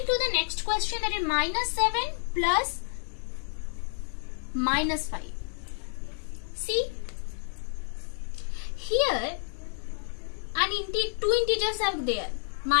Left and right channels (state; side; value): silent; right; 58 dB below the other